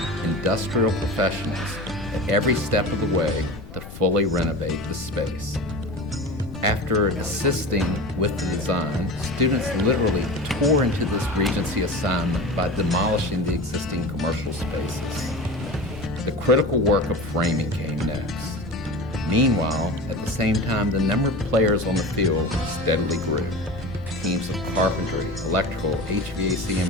industrial professionals at every step of the way to fully renovate the space. After assisting with the design, students literally tore into this Regency assignment by demolishing the existing commercial spaces. The critical work of framing came next. Meanwhile, at the same time, the number of players on the field steadily grew. Teams of carpentry, electrical, HVAC,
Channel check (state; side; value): noise; left; rumble, 14 dB below the sound